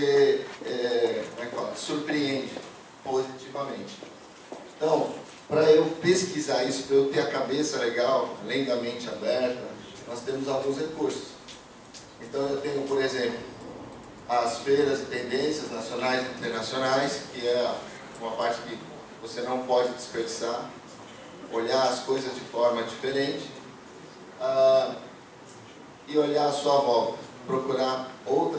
surpreende positivamente. Então, para eu pesquisar isso, para eu ter a cabeça legal, além da mente aberta, nós temos alguns recursos. Então eu tenho, por exemplo, as feiras e tendências nacionais e internacionais, que é uma parte que você não pode desperdiçar, olhar as coisas de forma diferente e olhar à sua volta, procurar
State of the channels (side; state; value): both; identical; correlation 1.00